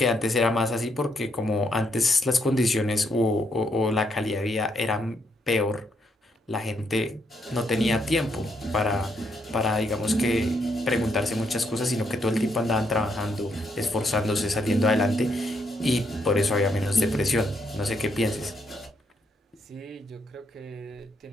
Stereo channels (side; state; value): both; normal; correlation 0.76